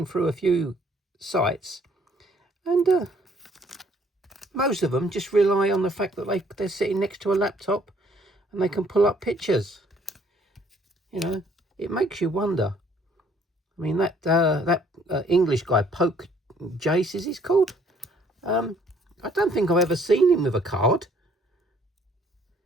through a few sites, and most of them just rely on the fact that they're sitting next to a laptop and they can pull up pictures. You know, it makes you wonder. I mean, that English guy, Poke Jace, is he's called? I don't think I've ever seen him with a card.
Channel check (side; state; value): both; normal; correlation 0.62